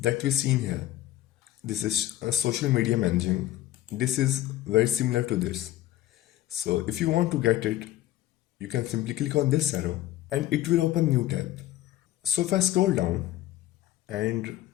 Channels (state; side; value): quieter; right; 14.3 dB